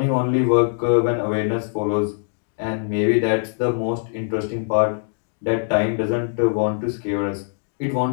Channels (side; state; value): right; silent; digital silence